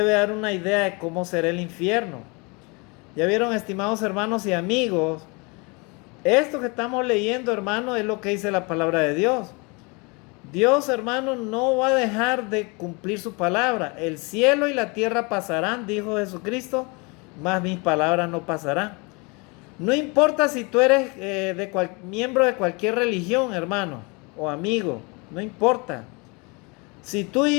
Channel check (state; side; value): quieter; right; 29.5 dB